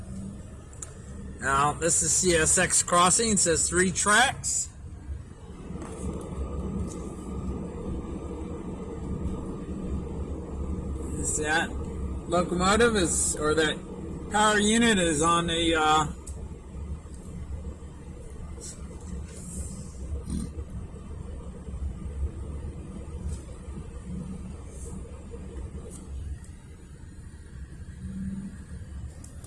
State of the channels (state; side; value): identical; both; correlation 1.00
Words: Now, this is CSX crossing. It says 3 tracks. That locomotive or that power unit is on a